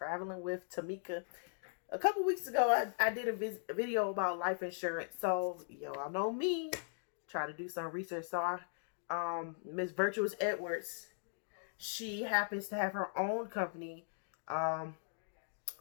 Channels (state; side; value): silent; right; digital silence